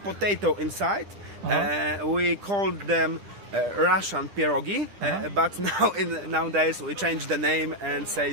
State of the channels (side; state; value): left; late; 10 ms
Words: potato inside. We called them Russian pierogi, but nowadays we change the name and say